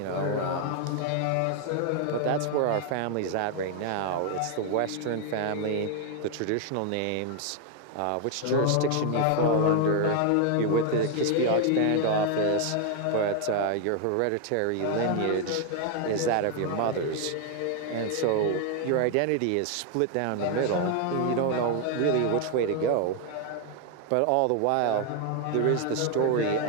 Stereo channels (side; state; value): both; different; correlation 0.00